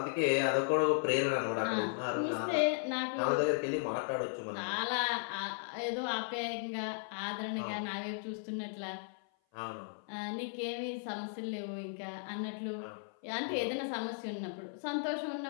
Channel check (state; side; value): silent; right; 54 dB below the other